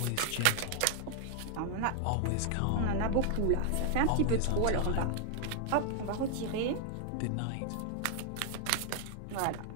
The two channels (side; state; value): both; different; correlation 0.00